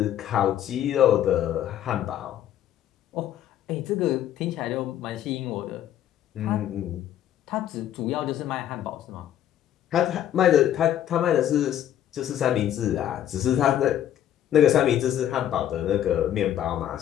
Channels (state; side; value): quieter; right; 11.2 dB